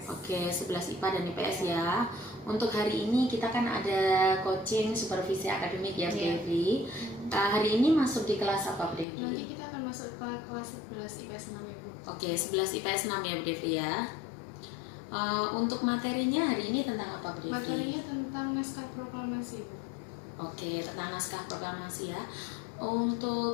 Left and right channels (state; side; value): drops out; right; at 9.1 s